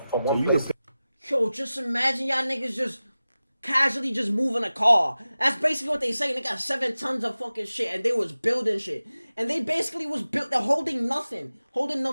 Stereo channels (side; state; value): both; inverted; correlation -0.96